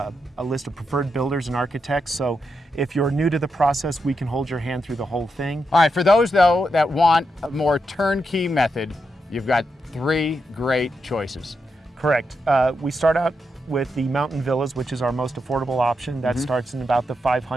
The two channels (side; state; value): both; normal; correlation 0.85